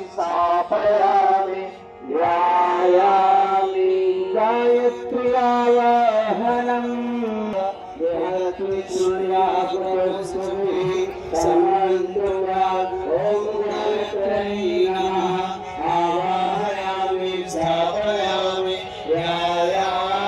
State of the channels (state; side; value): identical; both; correlation 1.00